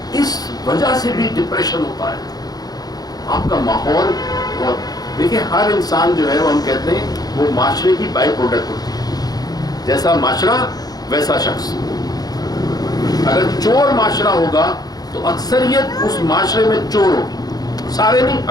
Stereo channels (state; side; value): late; right; 0.19 ms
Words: اس وجہ سے بھی ڈپریشن ہوتا ہے. آپ کا ماحول, اور دیکھیں ہر انسان جو ہے وہ ہم کہتے ہیں وہ معاشرے کی بائی پروڈکٹ ہوتی ہے. جیسا معاشرہ ویسا شخص. اگر چور معاشرہ ہوگا تو اکثریت اس معاشرے میں چور ہوگی, سارے نہیں